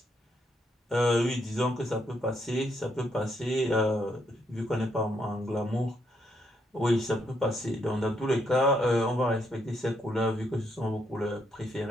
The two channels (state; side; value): normal; both; correlation 0.75